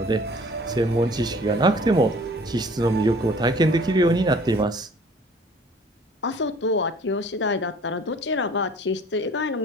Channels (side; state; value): both; normal; correlation 0.51